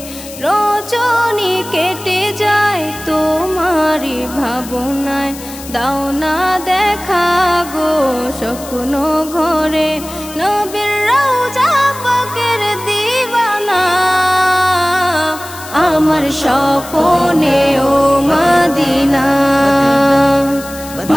রজনী কেটে যায় তোমার ভাবনায় দাও না দেখা গো স্বপ্ন ঘরে নবীর রওজা পাকের দিওয়ানা আমার স্বপ্নে ও Medina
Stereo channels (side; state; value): left; noise; hiss, 15 dB below the sound